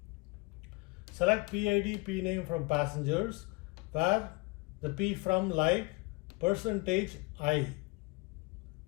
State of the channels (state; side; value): quieter; right; 25.9 dB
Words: Select PID, P name from passengers, where the P from like percentage I.